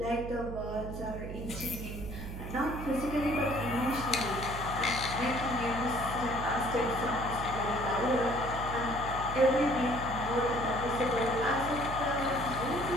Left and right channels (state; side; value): noise; right; hum, 8 dB below the sound